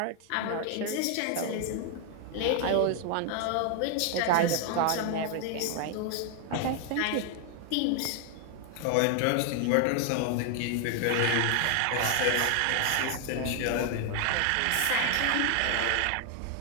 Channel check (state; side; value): different; both; correlation 0.00